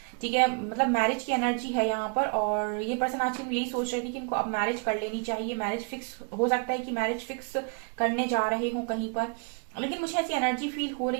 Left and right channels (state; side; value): quieter; left; 36.0 dB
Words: ठीक है। मतलब मैरिज की एनर्जी है यहाँ पर, और ये पर्सन आज के दिन यही सोच रहे थे कि इनको अब मैरिज कर लेनी चाहिए, मैरिज फिक्स हो सकता है कि मैरिज फिक्स करने जा रहे हो कहीं पर। लेकिन मुझे ऐसी एनर्जी फील हो